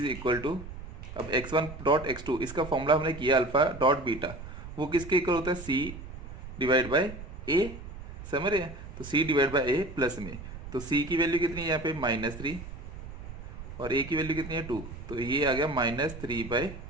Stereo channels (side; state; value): right; noise; rumble, 12 dB below the sound